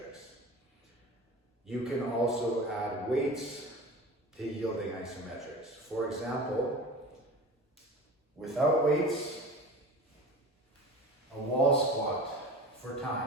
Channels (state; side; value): normal; both; correlation 0.35